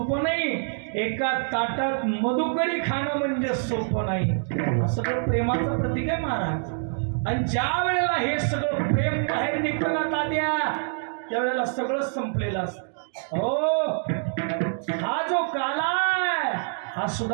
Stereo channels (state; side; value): silent; left; digital silence